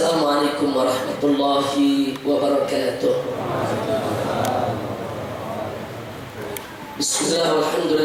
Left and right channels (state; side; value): identical; both; correlation 1.00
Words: warahmatullahi wabarakatuh. Bismillah,